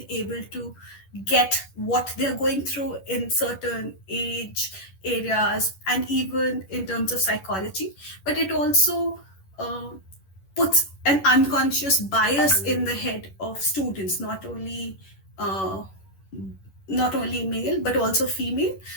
able to get what they're going through in certain age areas, and even in terms of psychology. But it also puts an unconscious bias in the head of students, uh, not only male but also female,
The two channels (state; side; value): late; right; 10 ms